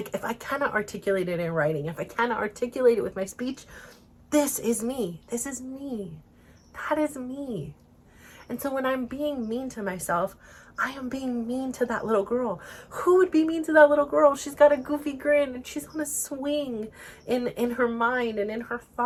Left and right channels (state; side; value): identical; both; correlation 1.00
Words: if I cannot articulate it in writing, if I cannot articulate it with my speech, this is me. This is me. That is me. And so when I'm being mean to myself, I am being mean to that little girl. Who would be mean to that little girl? She's got a goofy grin and she's on a swing in her mind and in her